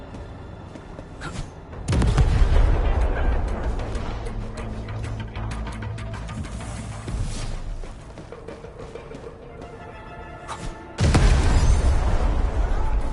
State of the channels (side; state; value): both; identical; correlation 1.00